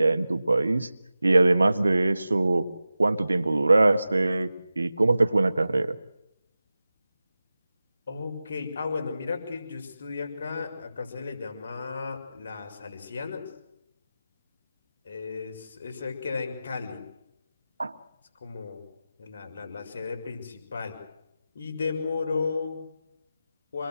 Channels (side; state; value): both; inverted; correlation -0.94